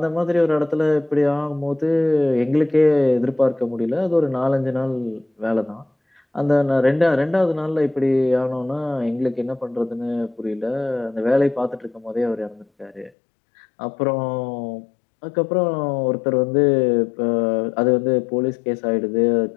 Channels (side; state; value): right; drops out; at 13.1 s